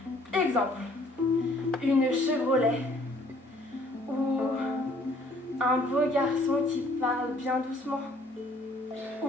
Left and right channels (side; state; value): both; normal; correlation 0.60